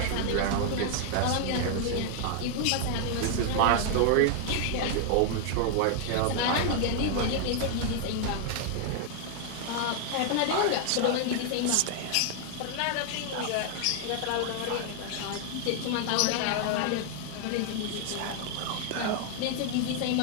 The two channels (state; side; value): different; both; correlation 0.00